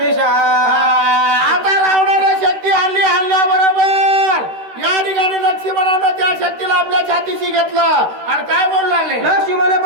आता रावणाला शक्ती हल्ल्याबरोबर या ठिकाणी लक्ष्मणानं त्या शक्तीला आपल्या छातीशी घेतलं आणि काय बोलू लागले लक्ष्मण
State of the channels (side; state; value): left; late; 13 ms